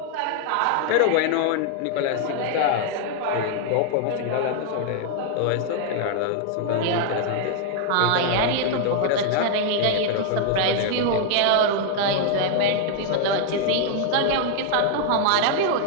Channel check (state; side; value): different; both; correlation 0.00